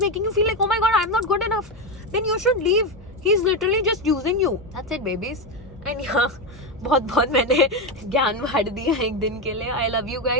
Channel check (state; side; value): normal; both; correlation 0.11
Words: making you feel like oh my god I am not good enough, then you should leave. He is literally just using you. That's it babies. And यहाँ बहुत मैंने ज्ञान बांट दिया एक दिन के लिए. I love you